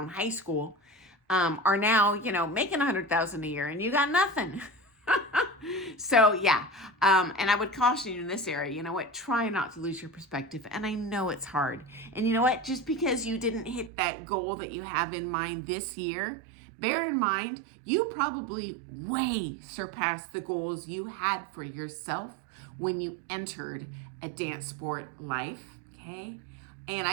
high school, are now, making $100,000 a year and you got nothing. So yeah, and I would caution you in this area, try not to lose your perspective. And I know it's hard. And you know what, just because you didn't hit that goal that you have in mind this year, bear in mind, you probably way surpassed the goals you had for yourself when you entered a dance sport life, okay? And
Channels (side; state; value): left; drops out; at 13.9 s